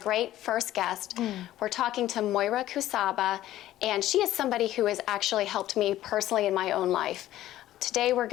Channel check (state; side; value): quieter; right; 14.0 dB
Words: first guest. We're talking to Moira Kucaba, and she is somebody who has actually helped me personally in my own life. Today we're